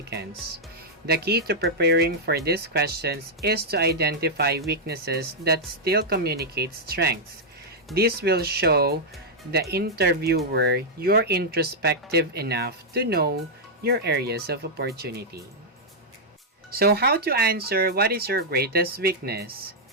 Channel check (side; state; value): both; normal; correlation -0.05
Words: The key to preparing for these questions is to identify weaknesses that still communicate strengths. This will show the interviewer you're introspective enough to know your areas of opportunity. So how to answer what is your greatest weakness?